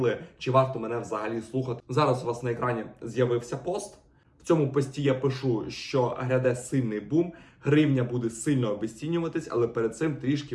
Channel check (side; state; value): both; identical; correlation 1.00